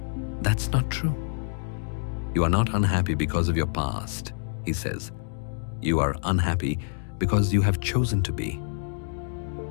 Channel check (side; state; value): right; silent; digital silence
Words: That's not true. You are not unhappy because of your past, he says. You are unhappy because you have chosen to be.